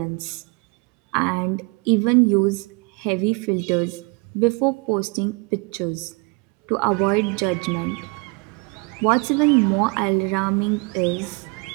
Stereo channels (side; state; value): left; quieter; 30.3 dB